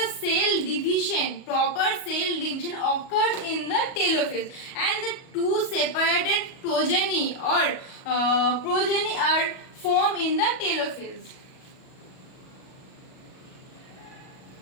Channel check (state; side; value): late; right; 38 ms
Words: proper cell division occurs in the telophase, and the two separated progeny are formed in the telophase.